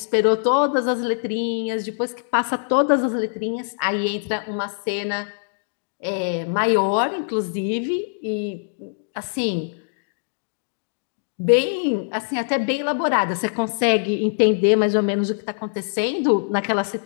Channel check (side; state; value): right; silent; digital silence